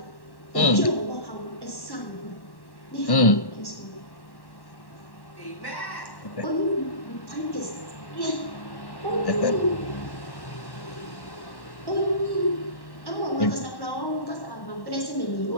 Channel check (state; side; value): late; right; 1.1 ms